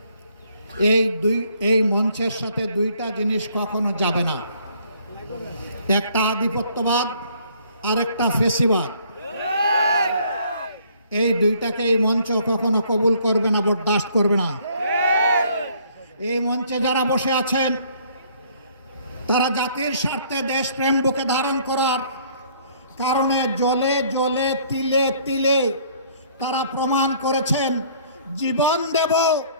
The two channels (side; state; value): both; inverted; correlation -0.61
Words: এই মঞ্চের সাথে 2টা জিনিস কখনো যাবে না। একটা আধিপত্যবাদ আর একটা ফেসিবাদ। এই 2টাকে এই মঞ্চ কখনো কবুল করবে না, বরদাস্ত করবে না। এই মঞ্চে যারা বসে আছেন তারা জাতির স্বার্থে দেশপ্রেম বুকে ধারণ করার কারণে জলে জলে তিলে তিলে তারা প্রমাণ করেছেন জীবন দেব,